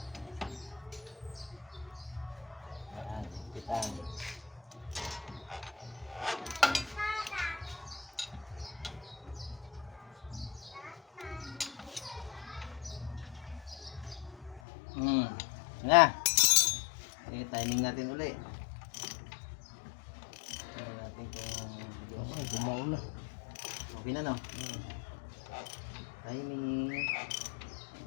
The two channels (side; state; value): right; drops out; at 14.6 s